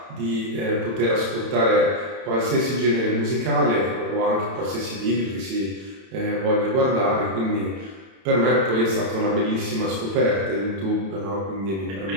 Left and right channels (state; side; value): late; left; 31 ms